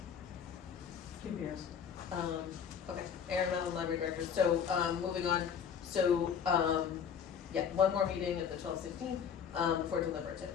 Kim Beers. Okay, Aaron Mellon, Library Director. So, moving on, so, one more meeting at the 12/16, for deliberative.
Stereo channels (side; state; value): right; quieter; 7.5 dB